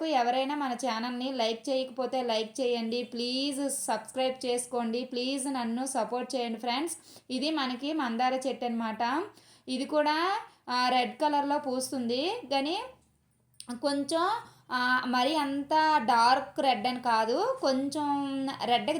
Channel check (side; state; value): both; identical; correlation 1.00